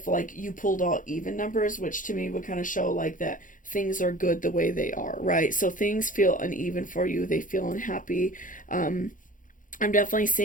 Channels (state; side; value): late; right; 0.38 ms